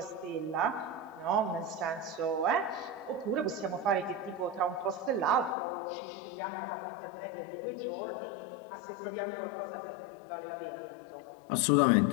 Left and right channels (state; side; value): drops out; right; at 5.6 s